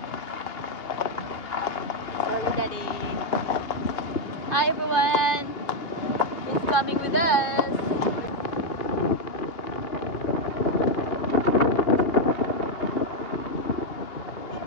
Daddy. Hi everyone. Who's coming with us?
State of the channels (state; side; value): late; right; 2.8 ms